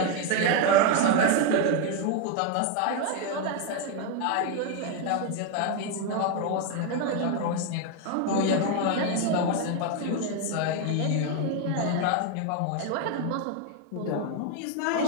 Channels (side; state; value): both; different; correlation 0.01